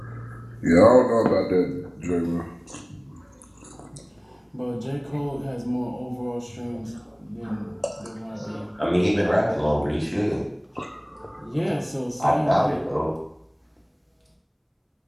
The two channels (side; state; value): both; identical; correlation 1.00